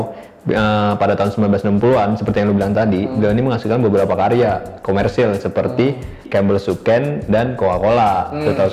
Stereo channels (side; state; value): both; identical; correlation 1.00